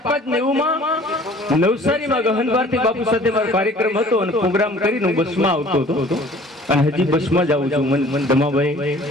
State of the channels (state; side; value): normal; both; correlation 0.51